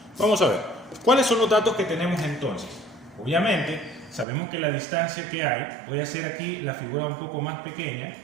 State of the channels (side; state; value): left; drops out; at 4.2 s